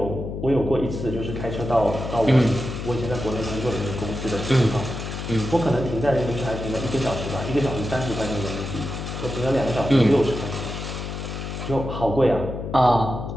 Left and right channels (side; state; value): left; noise; hum, 6 dB below the sound